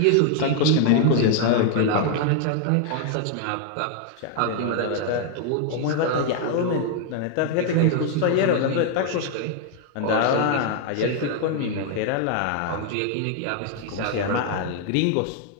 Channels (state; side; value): different; both; correlation 0.00